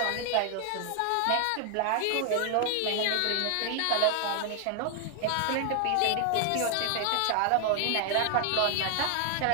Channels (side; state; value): both; different; correlation 0.00